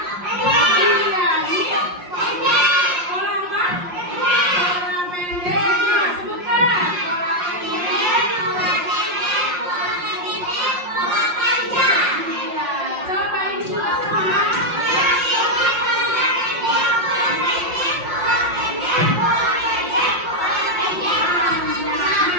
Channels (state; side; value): late; left; 5.6 ms